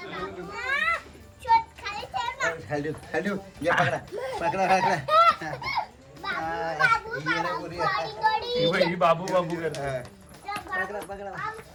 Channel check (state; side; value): identical; both; correlation 1.00